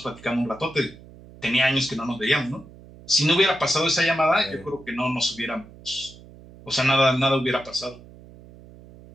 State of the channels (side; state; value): right; noise; hum, 20 dB below the sound